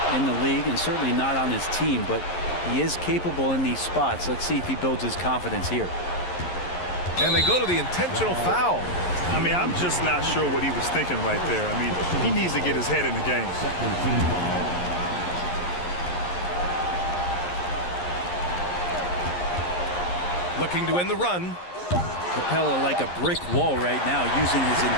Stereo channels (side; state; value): right; late; 11 ms